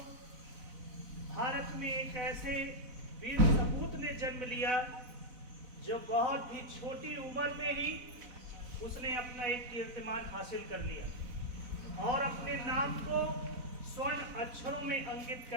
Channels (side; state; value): left; late; 4.0 ms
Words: भारत में एक ऐसे वीर सपूत ने जन्म लिया जो बहुत ही छोटी उम्र में ही उसने अपना एक कीर्तिमान हासिल कर लिया और अपने नाम को स्वर्ण अक्षरों में अंकित